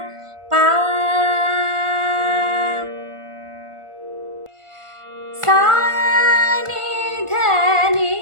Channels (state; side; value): late; left; 1.4 ms